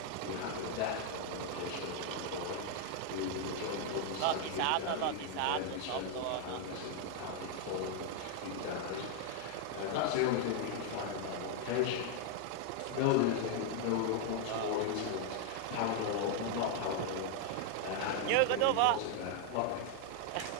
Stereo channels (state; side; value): different; both; correlation 0.00